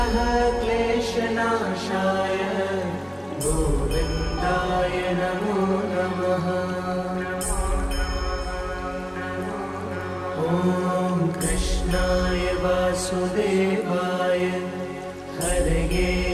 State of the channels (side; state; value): both; identical; correlation 1.00